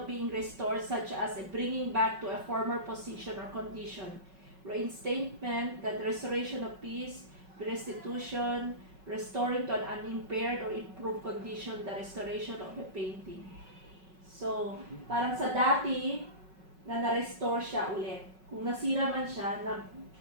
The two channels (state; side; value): late; left; 5.4 ms